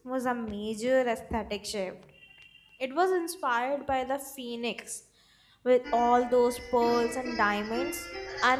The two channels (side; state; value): both; identical; correlation 1.00